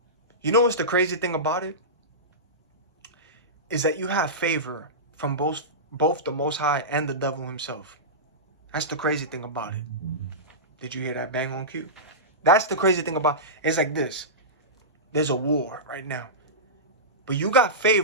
You know what's the crazy thing about it? Is that you have favor from both the Most High and the devil himself. That's the crazy thing about it. Did you hear that bang on cue? That's the crazy thing about it. It's like this. There's a war right now. But you got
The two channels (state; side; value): normal; both; correlation -0.17